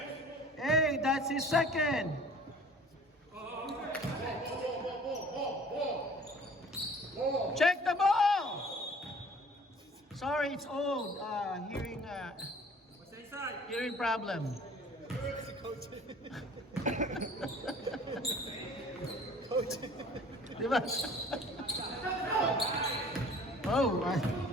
Hey, that's his second. Check the ball. Sorry, it's old. Hearing problem. Diba?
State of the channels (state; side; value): normal; both; correlation 0.49